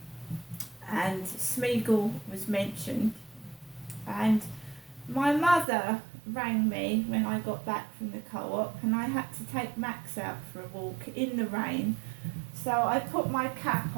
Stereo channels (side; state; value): left; drops out; at 5.7 s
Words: and Smeagol was mentioned, and my mother rang me when I got back from the co-op and I had to take Max out for a walk in the rain, so I put my cap